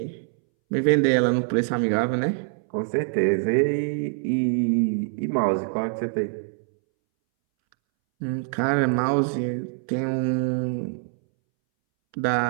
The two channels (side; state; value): left; silent; 62 dB below the other